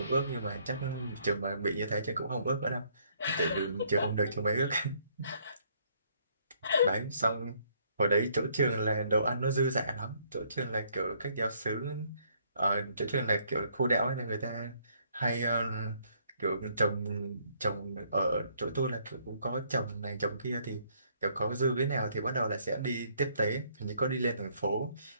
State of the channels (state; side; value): inverted; both; correlation -0.67